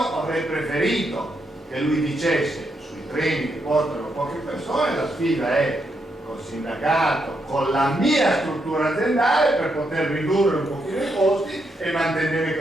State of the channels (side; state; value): both; normal; correlation 0.80